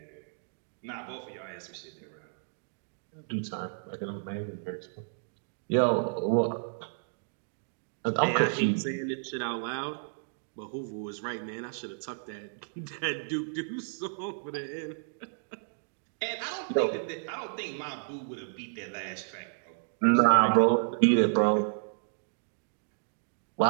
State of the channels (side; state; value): left; silent; digital silence